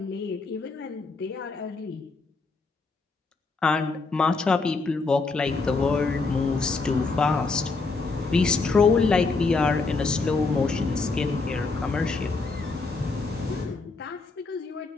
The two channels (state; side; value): quieter; right; 3.9 dB